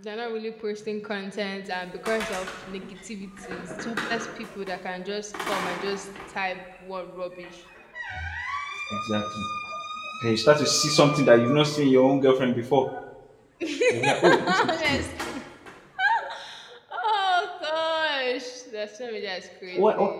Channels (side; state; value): both; identical; correlation 1.00